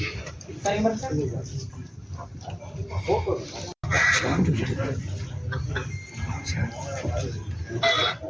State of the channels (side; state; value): both; identical; correlation 1.00